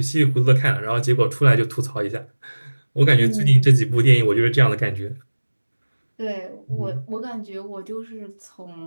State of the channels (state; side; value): inverted; both; correlation -1.00